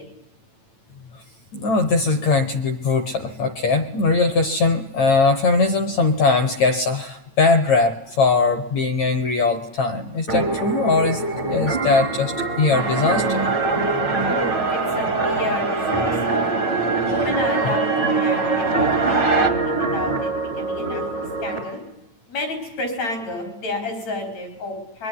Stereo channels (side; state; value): right; late; 9.0 ms